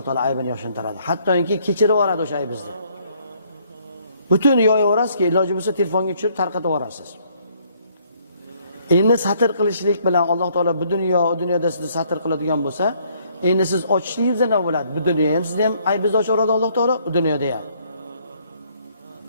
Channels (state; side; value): inverted; both; correlation -0.66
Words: taolo aybini yoshintiradi. Hattoki kechirib yuboradi o'sha aybingizni. Butun yoyaverasiz-ki, iloji bo'lsa telefonga tushirib tarqatib yuborasiz. Endi satr qilishlik bilan Alloh taolo bu dunyo, u dunyoda sizni satr qiladigan bo'lsa, endi siz ochishligingiz nima bo'ladi? Bu dunyoda ham sizni ham aybingizni ochaveradi Alloh taolo, u dunyoda ham.